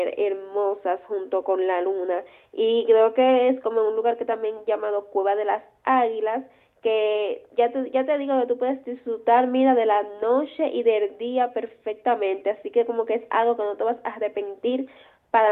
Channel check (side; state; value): both; identical; correlation 1.00